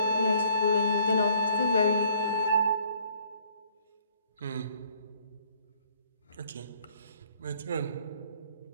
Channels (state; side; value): inverted; both; correlation -0.62